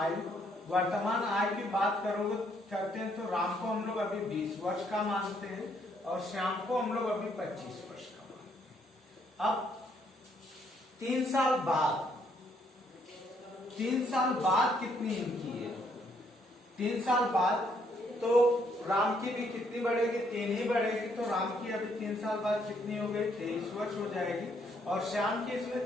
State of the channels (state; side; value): normal; both; correlation 0.70